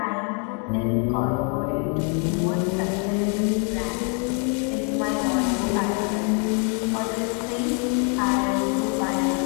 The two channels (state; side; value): quieter; right; 38.6 dB